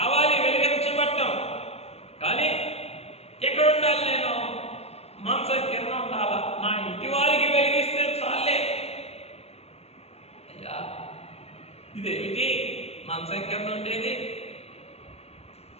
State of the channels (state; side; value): late; right; 0.30 ms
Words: వెలిగించబట్టం. కానీ ఎక్కడ ఉండాలి నేను? మంచం కింద ఉండాలా? నా ఇంటి వారికి వెలిగిస్తే చాలే. అయ్యా ఇదేమిటి మంచం కింద ఉండేది?